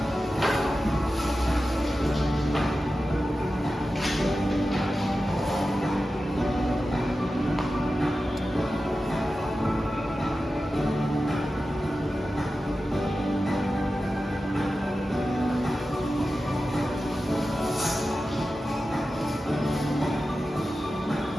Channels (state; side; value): normal; both; correlation 0.93